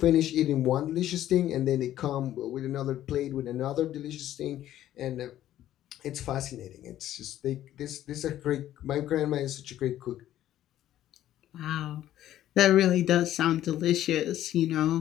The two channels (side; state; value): right; quieter; 12.7 dB